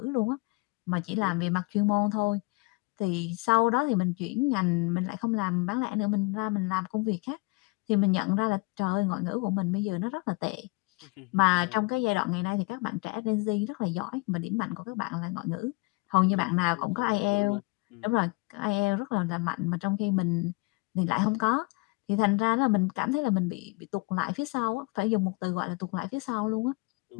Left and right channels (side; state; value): right; quieter; 26.8 dB